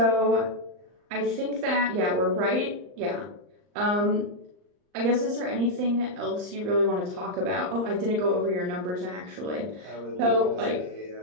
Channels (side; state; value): left; late; 39 ms